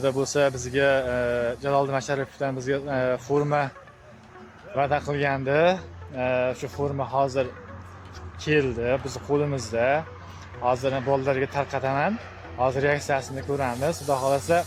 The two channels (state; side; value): identical; both; correlation 1.00